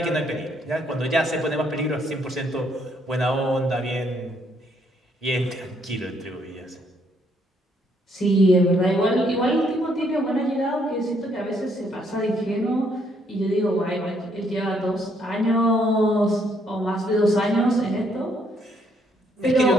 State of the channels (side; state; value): both; normal; correlation 0.70